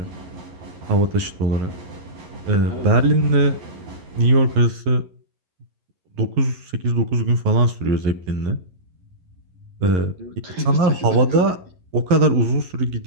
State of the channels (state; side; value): late; left; 11 ms